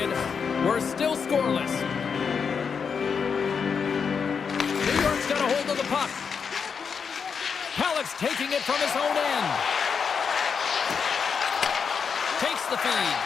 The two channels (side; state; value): right; quieter; 6.2 dB